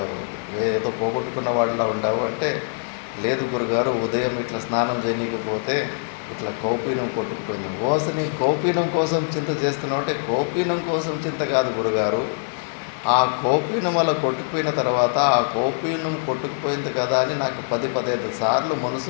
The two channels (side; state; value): right; silent; digital silence